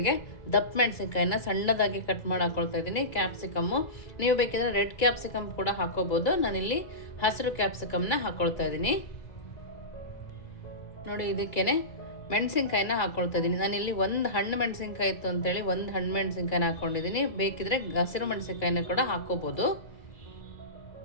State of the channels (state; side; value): late; right; 2.3 ms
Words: ದಪ್ಪ ಮೆಣಸಿನ್ಕಾಯಿನ ಸಣ್ಣದಾಗಿ ಕಟ್ ಮಾಡಿ ಹಾಕ್ಕೊಳ್ತಾ ಇದ್ದೀನಿ. ಕ್ಯಾಪ್ಸಿಕಮ್ಮು ನೀವು ಬೇಕಿದ್ರೆ ರೆಡ್ ಕ್ಯಾಪ್ಸಿಕಮ್ ಕೂಡ ಹಾಕ್ಕೋಬೋದು. ನಾನಿಲ್ಲಿ ಹಸಿರು ಕ್ಯಾಪ್ಸಿಕಮ್ನ ಹಾಕ್ಕೊಳ್ತಾ ಇದ್ದೀನಿ. ನೋಡಿ, ಇದಕ್ಕೇನೆ ಮೆಣಸಿನ್ಕಾಯಿನ ಹಾಕ್ಕೊಳ್ತಾ ಇದ್ದೀನಿ. ನಾನಿಲ್ಲಿ ಒಂದು ಹಣ್ಣು ಮೆಣಸಿನ್ಕಾಯಿ ಇತ್ತು ಅಂತೇಳಿ ಒಂದು ಹಣ್ಣು ಮೆಣಸಿನ್ಕಾಯಿನ ಹಾಕ್ಕೊಂಡಿದ್ದೀನಿ. ಬೇಕಿದ್ರೆ ಹಸಿರು ಮೆಣಸಿನ್ಕಾಯಿನ ಕೂಡ ಹಾಕ್ಕೋಬೋದು.